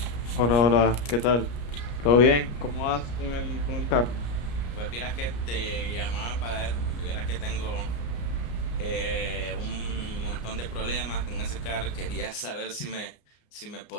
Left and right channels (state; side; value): late; right; 34 ms